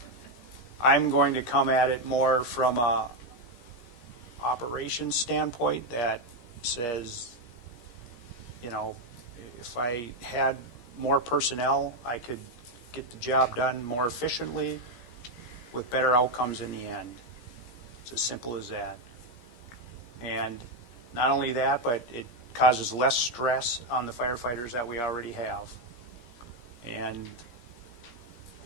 I'm going to come at it more from a operations standpoint that says, you know, if I had more personnel, I could get the job done more efficiently with better outcomes in the end. It's as simple as that. And not only that, but it causes less stress on the firefighters that we already have. And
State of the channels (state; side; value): late; right; 17 ms